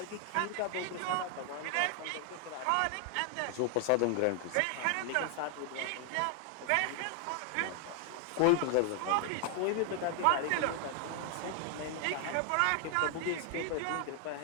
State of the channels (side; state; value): both; different; correlation 0.00